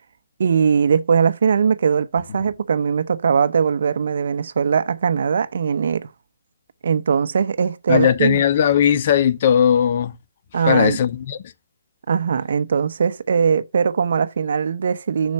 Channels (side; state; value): both; inverted; correlation -0.71